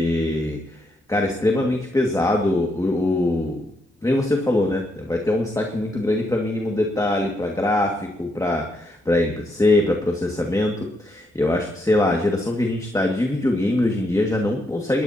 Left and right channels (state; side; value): normal; both; correlation 0.78